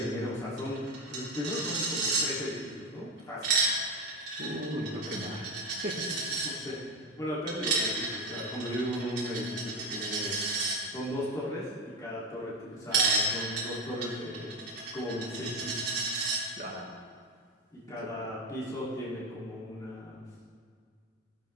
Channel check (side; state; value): both; normal; correlation 0.17